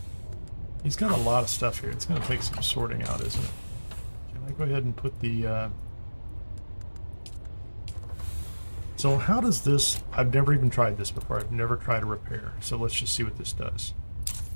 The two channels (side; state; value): both; inverted; correlation -1.00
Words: He's got a lot of stuff here. It's going to take some sorting out, isn't it? Can I go ahead and put the... So how does this... I've never even tried this before. I've never tried a repair. So let's just see what this does.